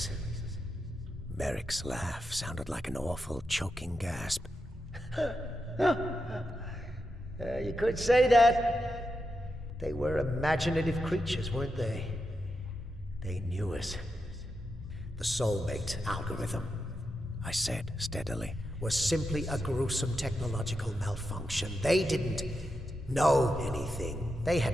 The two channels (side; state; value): both; normal; correlation 0.87